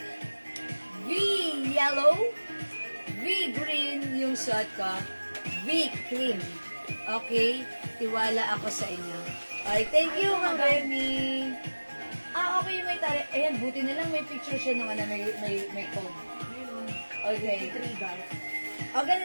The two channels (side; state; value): both; inverted; correlation -1.00